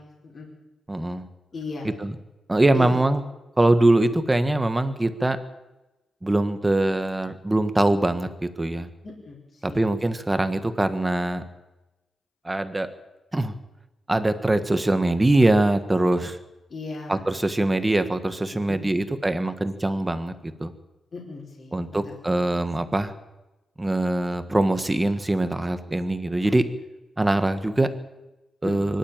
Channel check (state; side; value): normal; both; correlation 0.97